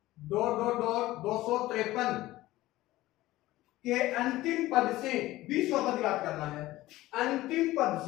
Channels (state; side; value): quieter; right; 16.9 dB